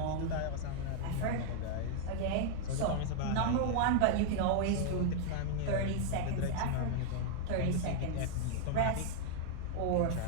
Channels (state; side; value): different; both; correlation 0.00